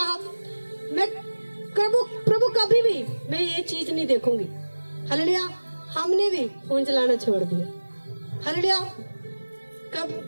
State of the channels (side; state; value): both; inverted; correlation -1.00